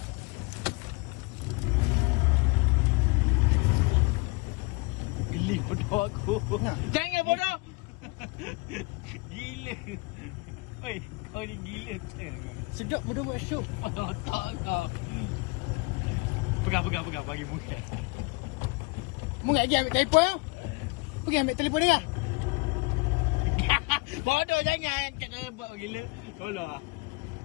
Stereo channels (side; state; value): right; quieter; 27.8 dB